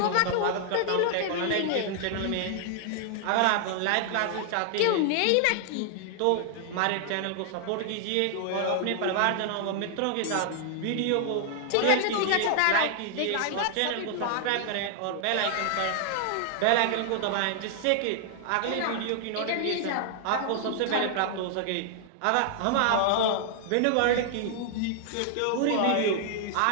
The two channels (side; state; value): both; different; correlation 0.00